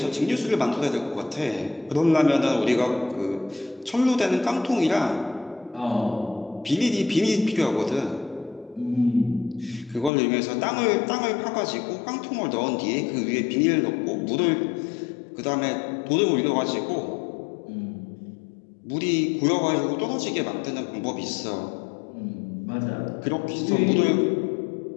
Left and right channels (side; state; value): right; drops out; at 10.1 s